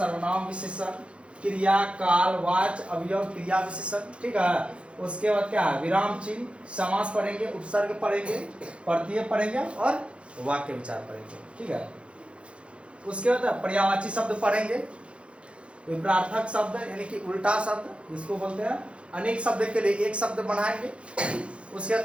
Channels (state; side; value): late; left; 0.059 ms